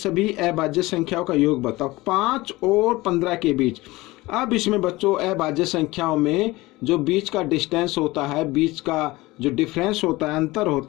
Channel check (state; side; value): quieter; right; 20.3 dB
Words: अभाज्य संख्याओं का योग बताओ। 5 और 15 के बीच। अब इसमें बच्चों अभाज्य संख्याओं में जो बीच का डिस्टेंस होता है, बीच का जो डिफरेंस होता है, अंतर